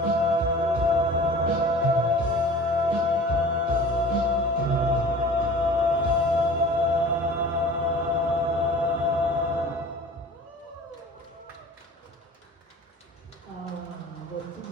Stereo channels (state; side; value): normal; both; correlation 0.42